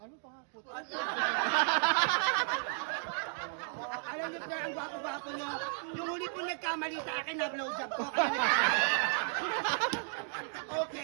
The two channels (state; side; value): silent; left; 55 dB below the other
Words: pa nga? Putlong. Alam niyo, sir, ang gwapo-gwapo niyo. Yung huli po nagkamali sa akin na blowjob ko.